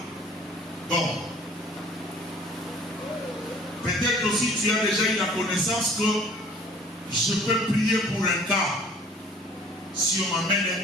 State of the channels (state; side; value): normal; both; correlation 0.52